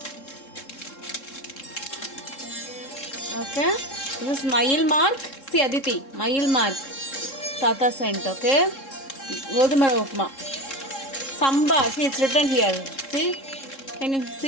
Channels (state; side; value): late; right; 3.7 ms